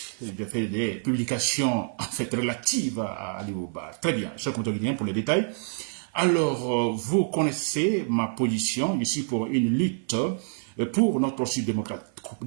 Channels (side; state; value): left; silent; 56 dB below the other